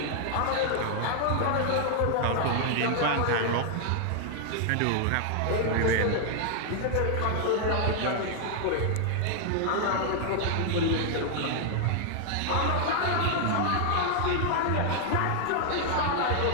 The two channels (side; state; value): both; different; correlation 0.00